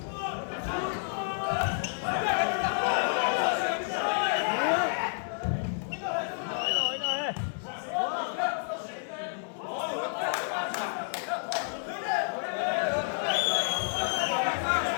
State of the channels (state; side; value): silent; right; 58 dB below the other